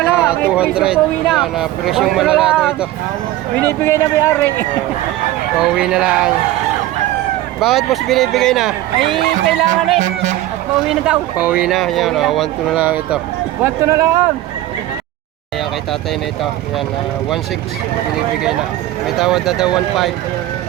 Yan ah, presyong malalado ito. Binibigay na may-ari. Pauwi na lang. Bakit boss binibigay na? Ay, kailangan eh. At pauwi na daw. Pauwi na, yan ah, 1 to na lang ito. 1 to na lang. Kaya kay tatay na ito, yan 1.6 binibigay na. May tawad na daw 1.5.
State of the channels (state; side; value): quieter; left; 15.2 dB